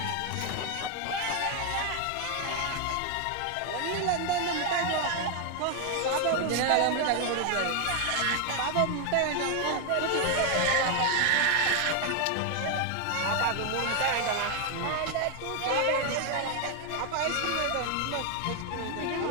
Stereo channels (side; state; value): both; different; correlation 0.01